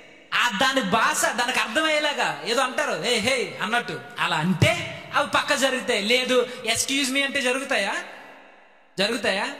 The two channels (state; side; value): identical; both; correlation 1.00